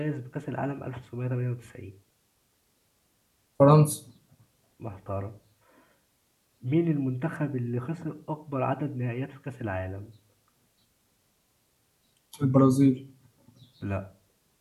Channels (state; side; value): identical; both; correlation 1.00